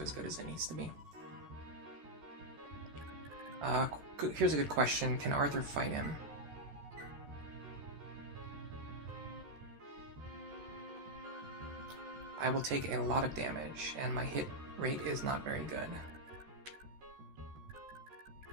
as good as it needs to be. Here's a good question. Can Arthur fight him? I will take a lot of damage, and my hit rate is not very good.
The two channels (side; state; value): left; late; 14 ms